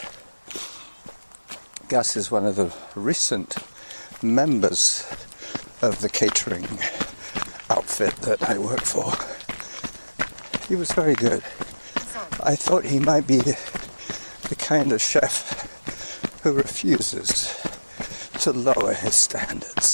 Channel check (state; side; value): inverted; both; correlation -1.00